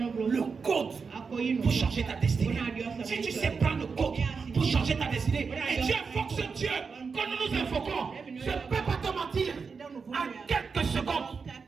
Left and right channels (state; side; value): quieter; left; 5.2 dB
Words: code pour changer ta destinée. Si tu sais prendre le code pour changer ta destinée, et Dieu invoque ce Dieu que nous nous invoquons, je ne peux pas te mentir, en quelques secondes.